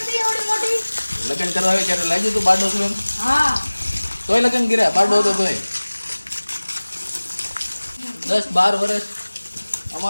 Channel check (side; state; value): both; inverted; correlation -1.00